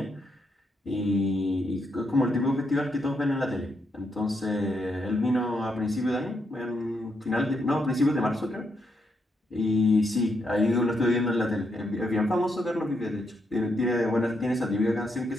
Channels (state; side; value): normal; both; correlation 0.79